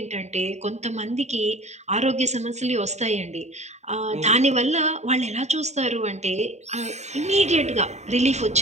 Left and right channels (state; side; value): late; left; 0.33 ms